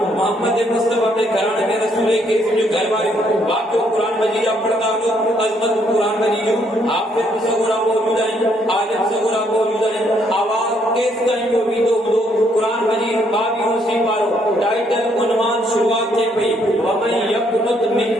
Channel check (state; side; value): normal; both; correlation 0.70